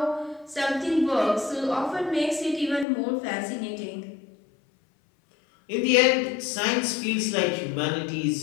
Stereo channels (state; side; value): drops out; right; at 2.9 s